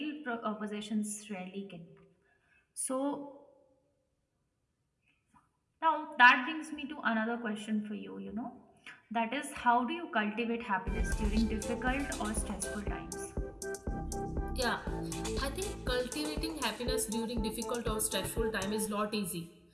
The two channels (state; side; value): identical; both; correlation 1.00